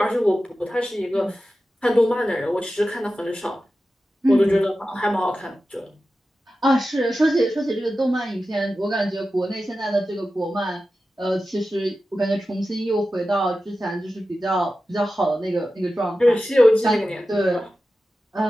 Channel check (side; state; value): both; normal; correlation 0.93